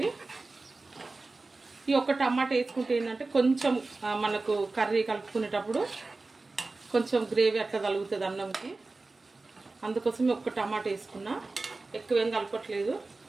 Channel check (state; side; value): quieter; left; 3.5 dB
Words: ఈ ఒక్క టమాటా వేసుకుంటే ఏంటంటే కొంచెం మనకు కర్రీ కలుపుకునేటప్పుడు కొంచెం గ్రేవీ అట్లా తగులుతుంది అన్నంకి, అందుకోసం ఒక్క టమాటా వేసుకున్నా, ఎక్కువ ఏం కలపట్లేదు,